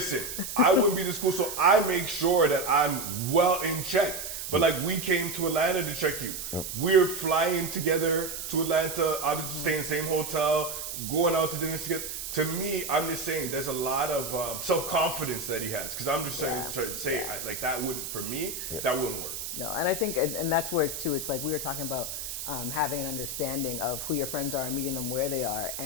I wouldn't be this cool, so I make sure that I'm well in check. But like we came to Atlanta to check you. We're flying together to Atlanta, obviously staying in the same hotel, going out to dinner together. To me, I'm just saying there's a lot of self-confidence that he has. Because I'm just trying to say like that wouldn't, for me, that wouldn't work. No, and I think, and that's where it's too, it's like we were talking about having an understanding of who your friends are and meeting them where they are.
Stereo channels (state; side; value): noise; right; hiss, 6 dB below the sound